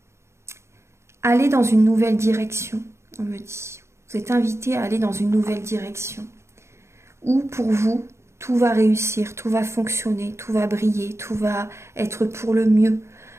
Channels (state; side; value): late; left; 0.13 ms